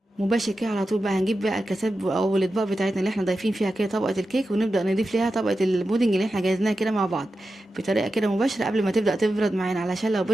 مباشر كده على طول بقى هنجيب بقى الكاسات او الاطباق بتاعتنا اللي احنا ضايفين فيها كده طبقه الكيك ونبدا نضيف ليها طبقه البودنج اللي احنا جهزناها كده مع بعض بطريقه كده مباشره قبل ما تبدا تبرد معانا، علشان لو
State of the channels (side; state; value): both; normal; correlation 0.91